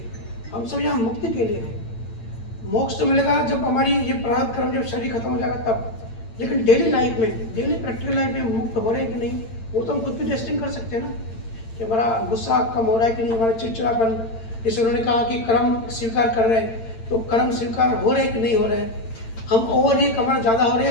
हम सब यहाँ मुक्ति के लिए हैं। मोक्ष तो मिलेगा जब हमारी ये प्रारब्ध कर्म, जब शरीर खत्म हो जाएगा तब। लेकिन डेली लाइफ में, डेली प्रैक्टिकल लाइफ में मुक्त हो रहे हैं कि नहीं, वो तो हम खुद भी टेस्टिंग कर सकते हैं ना, कि हमारा गुस्सा कम हो रहा है कि नहीं, हमारा चिड़चिड़ापन, जैसे उन्होंने कहा कि कर्म स्वीकार कर रहे हैं, तो कर्म स्वीकार हो रहे हैं कि नहीं हो रहे हैं। हम ओवर रिएक्ट हमारा ज़्यादा हो रहा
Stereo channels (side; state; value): right; late; 8.8 ms